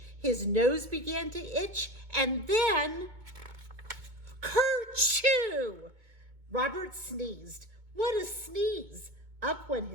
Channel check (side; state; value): left; late; 2.2 ms